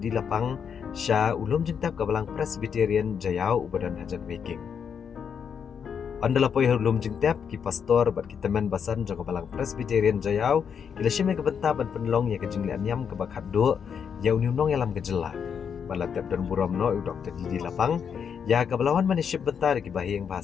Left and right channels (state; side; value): quieter; right; 7.2 dB